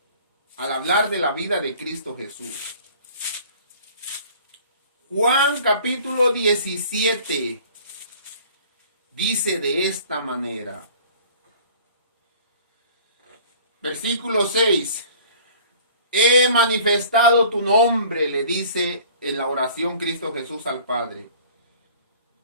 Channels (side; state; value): both; inverted; correlation -0.50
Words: al hablar de la vida de Cristo Jesús. Juan capítulo 17 dice de esta manera. Versículo 6. He manifestado tu nombre, le dice en la oración Cristo Jesús al Padre.